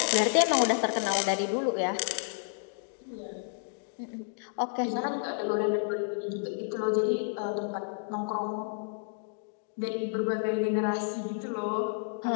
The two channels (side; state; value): right; silent; digital silence